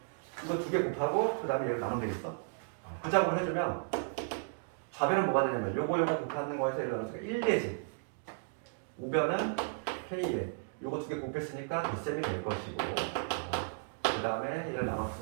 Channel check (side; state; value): left; silent; digital silence